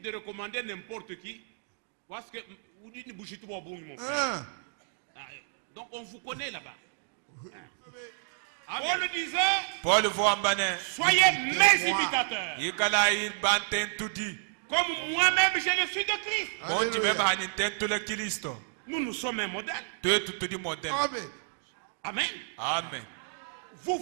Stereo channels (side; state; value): left; silent; digital silence